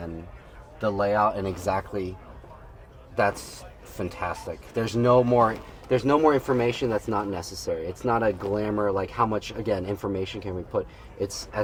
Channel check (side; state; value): both; identical; correlation 1.00